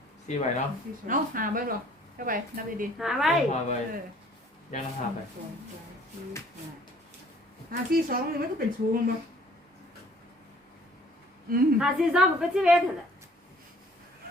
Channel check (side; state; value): both; normal; correlation 0.56